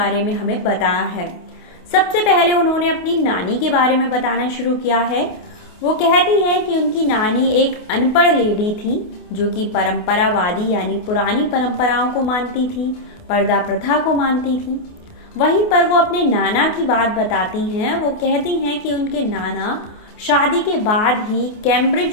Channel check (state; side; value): late; right; 28 ms